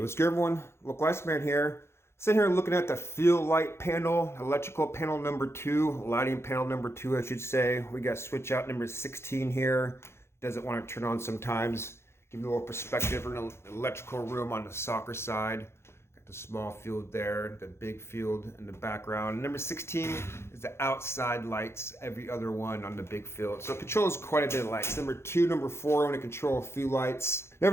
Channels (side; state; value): right; late; 0.12 ms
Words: good everyone? Look, Lifespan here. Sitting here looking at the field light panel, electrical panel number 2, lighting panel number 2, I should say. We got switch out number 16 here. Doesn't want to turn on sometimes. Give you a little perspective in the electrical room on the soccer side. Got the small field there, the big field in the background. Number 16 is the outside lights, every other one on the big field. So it controls quite a bit of lights. Number 2, number 4, I'm going to control a few lights.